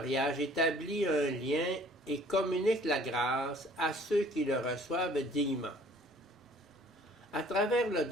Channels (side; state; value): both; normal; correlation 0.55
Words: établit un lien et communique la grâce à ceux qui le reçoivent dignement. À travers le